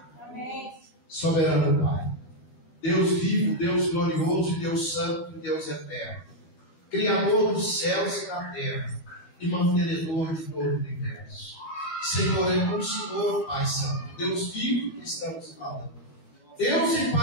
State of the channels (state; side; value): late; right; 12 ms